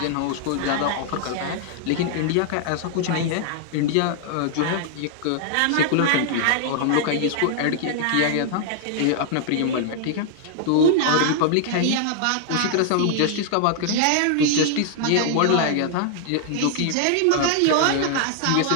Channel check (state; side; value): different; both; correlation 0.00